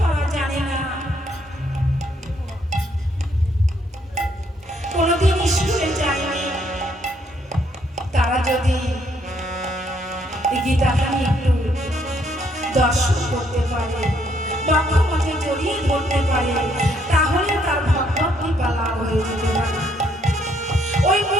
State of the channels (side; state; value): both; normal; correlation 0.70